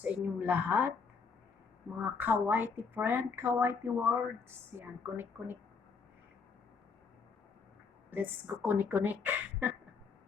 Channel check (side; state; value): right; quieter; 5.2 dB